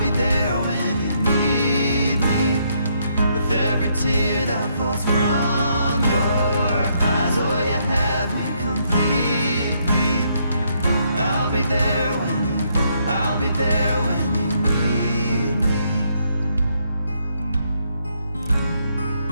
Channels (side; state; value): both; inverted; correlation -0.73